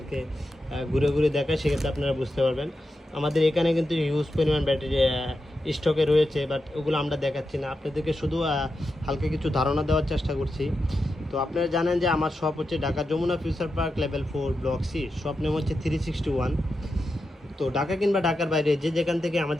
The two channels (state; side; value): normal; both; correlation 0.88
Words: ঘুরে ঘুরে দেখাই সেক্ষেত্রে আপনারা বুঝতে পারবেন। আমাদের এখানে কিন্তু হিউজ পরিমাণ ব্যাটারি স্টকে রয়েছে, বাট ওগুলো আমরা দেখাচ্ছি না, আপনাদেরকে শুধু হালকা কিছু ধারণা দেওয়ার চেষ্টা করছি। তো আপনারা জানেন যে আমার শপ হচ্ছে Dhaka Jamuna Future Park level 4 block C, shop name হচ্ছে 361। তো ঢাকা কিংবা ঢাকার বাইরে যে যেখান থেকে